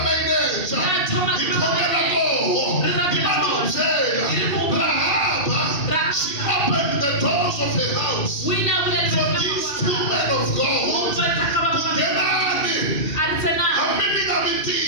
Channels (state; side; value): late; right; 2.4 ms